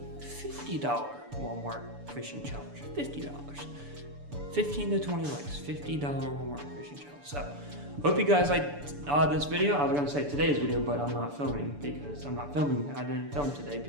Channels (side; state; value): left; late; 6.9 ms